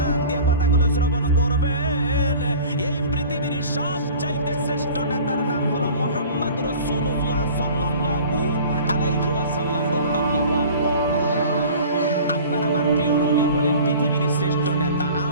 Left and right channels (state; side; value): inverted; both; correlation -0.43